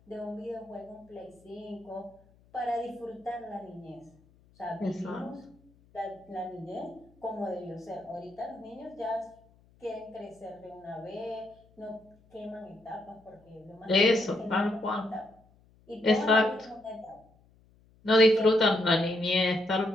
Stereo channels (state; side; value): noise; left; hum, 30 dB below the sound